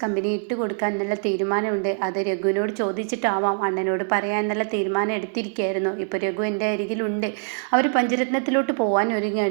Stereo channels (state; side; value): silent; left; digital silence